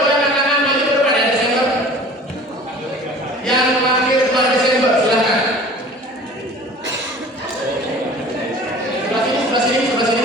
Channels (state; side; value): normal; both; correlation 0.44